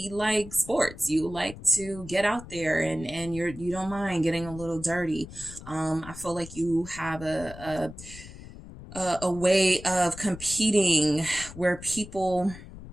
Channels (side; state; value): left; noise; rumble, 15 dB below the sound